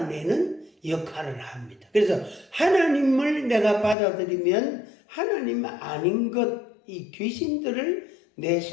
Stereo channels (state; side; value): drops out; right; at 4.0 s